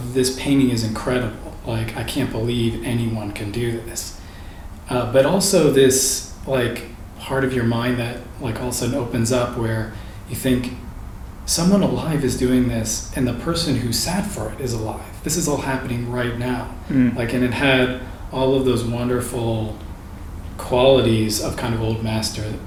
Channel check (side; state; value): both; identical; correlation 1.00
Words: this painting is incredible. Like, I can't believe anyone can do this. But also this like part of your mind that like all of a sudden opens up where you think someone alive is doing this and the person who sat for it is alive. This is all happening right now. Like, and it had all of those wonderful qualities of kind of old master